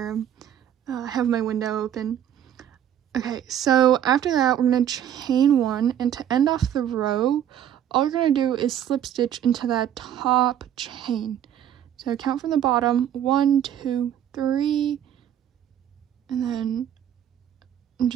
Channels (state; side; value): quieter; left; 10.2 dB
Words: them. I have my window open. Okay, so after that, we're gonna chain 1, and to end off the row, all we're gonna do is slip stitch into that top chain. So count from the bottom, 1, 2, 3, and then I'm